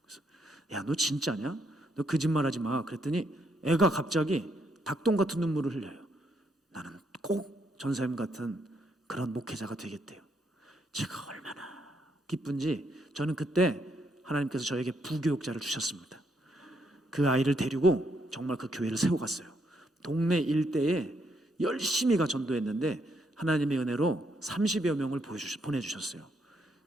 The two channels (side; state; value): both; normal; correlation 0.75